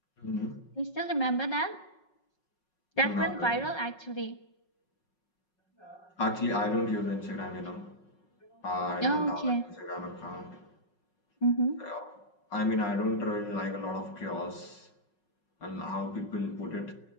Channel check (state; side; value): late; right; 5.5 ms